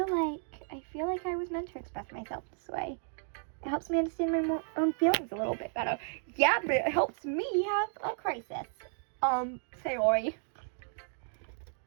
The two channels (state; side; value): silent; left; 56 dB below the other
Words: like I was meant to express myself this way. It helps me understand my own feelings a little bit better. Yeah, but it helps me have a crisis. Sayori.